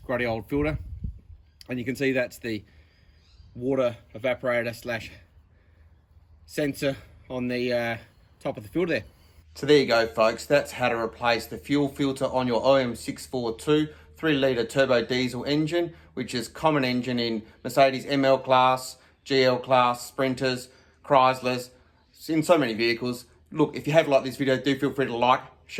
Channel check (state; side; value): identical; both; correlation 1.00